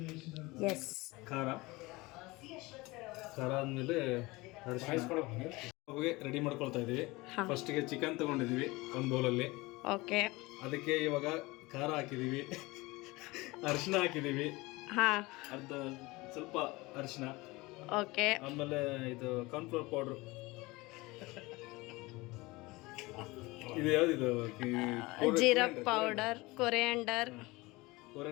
ಎಸ್, ಖಾರ ಆದಮೇಲೆ ರೆಡಿ ಮಾಡ್ಕೊಳ್ತಾ ಇದ್ದೀವಿ. ಫಸ್ಟಿಗೆ ಚಿಕನ್ ತೊಗೊಂಡಿದ್ದೀವಿ ಒಂದು ಬೌಲಲ್ಲಿ. ಓಕೆ, ಅದಕ್ಕೆ ಇವಾಗ ಖಾರ ಹಾಕಿದ್ದೀವಿ, ಅರಿಶಿನ ಹಾಕಿದ್ದೀವಿ, ಅರ್ಧ ಸ್ವಲ್ಪ ಅರಿಶಿನ. ಓಕೆ, ಆಮೇಲೆ ಇದು ಕಾರ್ನ್ಫ್ಲವರ್ ಪೌಡ್ರು. ಇದು ಯಾವುದಿದು? ಜೀರಾ powder, coriander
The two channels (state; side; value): quieter; right; 22.3 dB